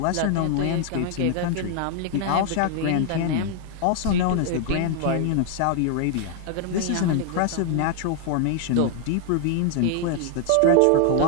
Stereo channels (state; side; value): different; both; correlation 0.00